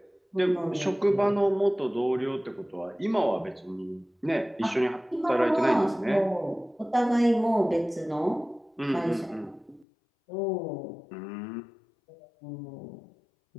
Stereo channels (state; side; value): drops out; right; at 9.9 s